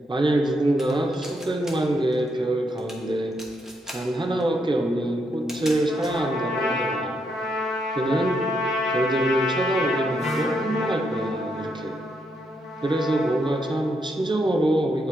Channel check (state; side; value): normal; both; correlation 0.78